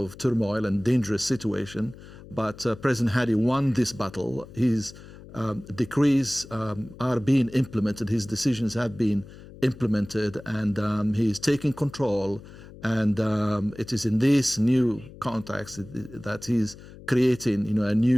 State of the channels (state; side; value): noise; left; hum, 18 dB below the sound